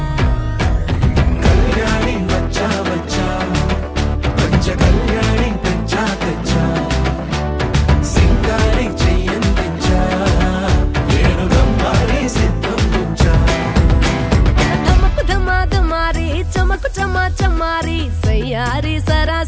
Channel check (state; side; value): identical; both; correlation 1.00